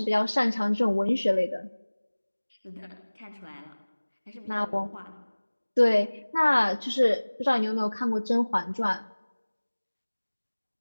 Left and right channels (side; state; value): both; inverted; correlation -1.00